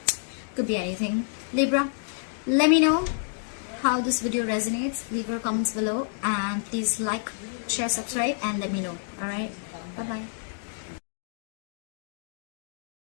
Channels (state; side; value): silent; right; digital silence